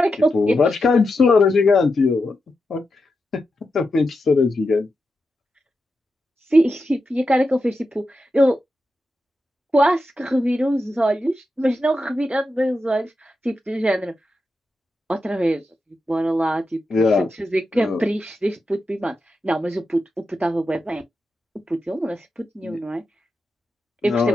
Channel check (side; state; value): both; normal; correlation 0.88